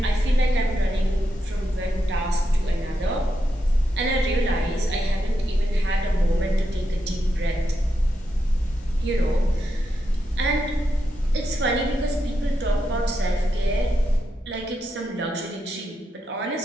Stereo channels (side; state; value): both; normal; correlation 0.84